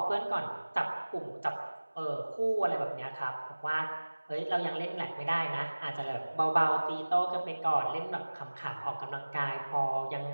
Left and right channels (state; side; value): inverted; both; correlation -1.00